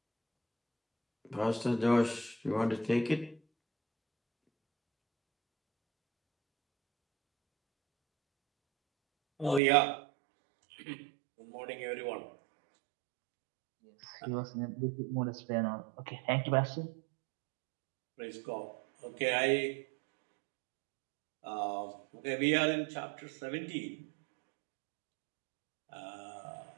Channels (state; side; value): drops out; left; at 9.6 s